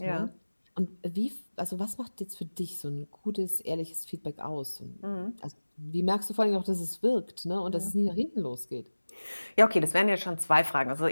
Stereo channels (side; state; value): both; inverted; correlation -1.00